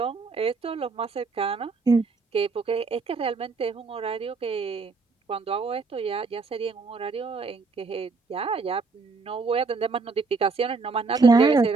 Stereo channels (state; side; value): quieter; left; 4.3 dB